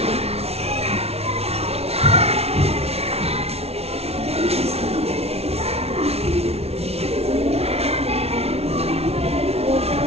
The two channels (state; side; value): late; left; 0.30 ms